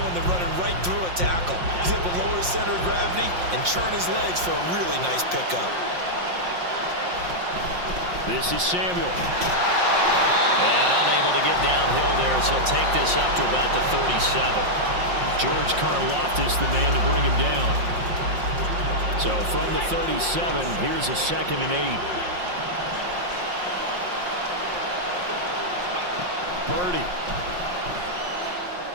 than running right through a tackle. He's able to lower his center of gravity and churn his legs for a really nice pickup. This is Samuel. And unable to get downhill there, so he'll take this up to about the 37. George Karlaftis, the man to bring him down. So from the 37, here's a 2nd and 8. Purdy.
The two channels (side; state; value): left; late; 5.6 ms